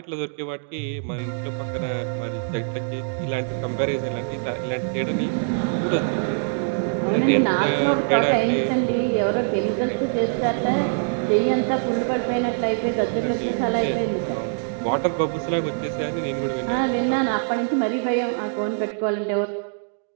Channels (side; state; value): left; silent; digital silence